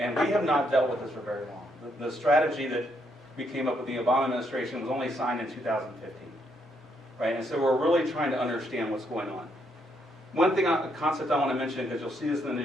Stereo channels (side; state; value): both; normal; correlation 0.75